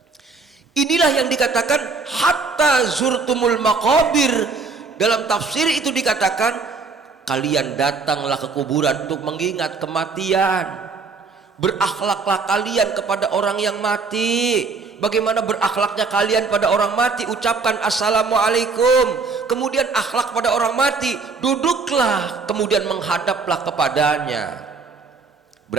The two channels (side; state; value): left; quieter; 4.5 dB